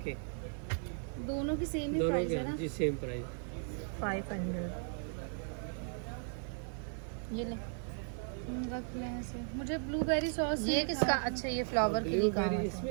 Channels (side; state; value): left; silent; 54 dB below the other